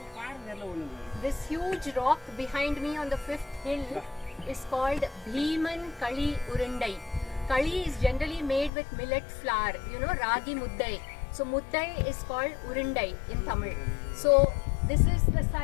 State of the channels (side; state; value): right; drops out; at 8.7 s